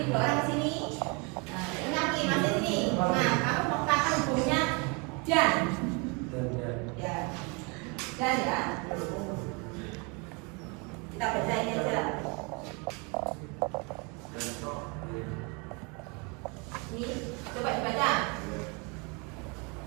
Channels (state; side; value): quieter; left; 31.1 dB